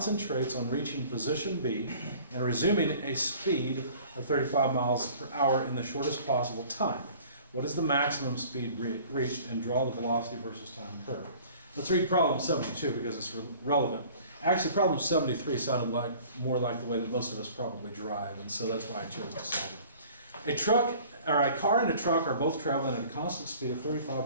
on reaching position B and resuming a speed of 35 miles per hour in the shortest possible time. What is the maximum speed reached, and draw the velocity versus time curve? Let's read problem 72 because it's relevant. Actually, problem 73 sounded more like the way that most of us probably drive, and so that's why I chose to solve it. A car and a truck are both traveling at a constant speed of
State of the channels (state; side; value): inverted; both; correlation -0.49